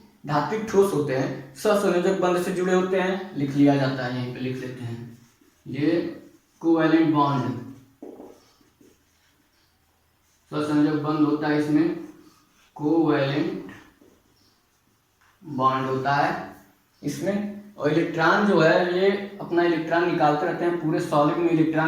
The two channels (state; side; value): identical; both; correlation 1.00